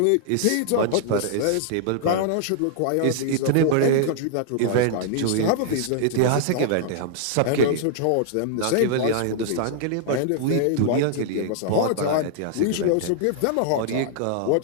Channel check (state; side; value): different; both; correlation -0.01